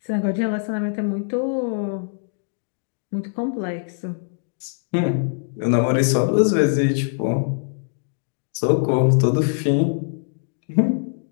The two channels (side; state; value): right; silent; digital silence